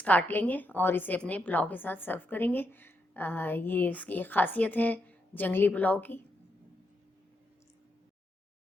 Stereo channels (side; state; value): both; normal; correlation 0.81